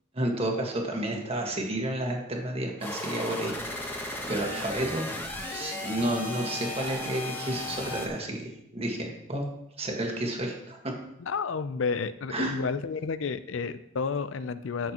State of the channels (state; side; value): normal; both; correlation 0.34